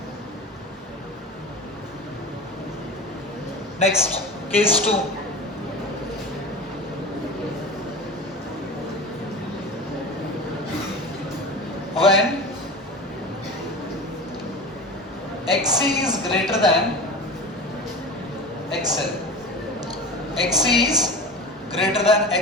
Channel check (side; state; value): both; normal; correlation 0.30